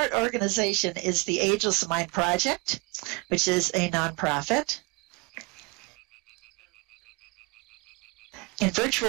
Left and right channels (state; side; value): quieter; left; 27.3 dB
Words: organization is the Ageless Mind Project, which is a nonprofit. In